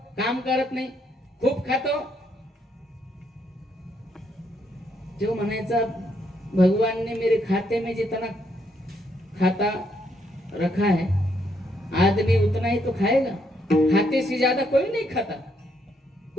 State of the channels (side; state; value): both; normal; correlation 0.74